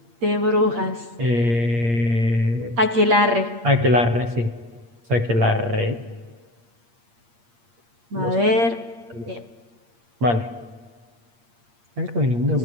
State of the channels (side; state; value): left; late; 8.6 ms